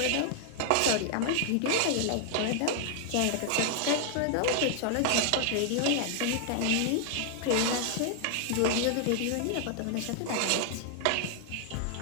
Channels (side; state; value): both; different; correlation 0.00